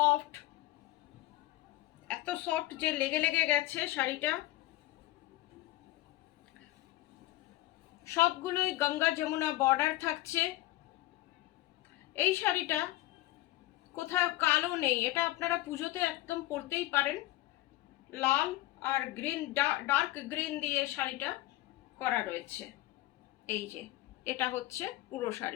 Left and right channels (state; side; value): quieter; right; 17.1 dB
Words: এত সফট যে লেগে লেগে গেছে শাড়িটা। সবগুলোই গঙ্গা যমুনা বর্ডার থাকছে। এই শাড়িটা কোথাও কালো নেই, এটা আপনারা পুজোতে একদম পরতেই পারেন। লাল আর গ্রিন, ডার্ক গ্রিন দিয়ে শাড়িটা করা রয়েছে। এই যে এটা হচ্ছে পুরো